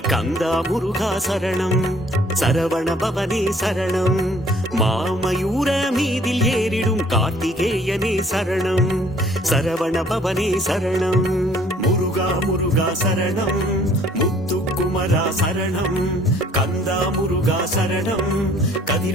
கந்தா முருகா சரணம் சரவண பவனே சரணம் மாமயூர மீதில் ஏறிடும் கார்த்திகேயனே சரணம் சரவண பவனே சரணம் முருகா முருகா சரணம் முத்துக்குமரா சரணம் கந்தா முருகா சரணம்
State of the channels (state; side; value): normal; both; correlation 0.58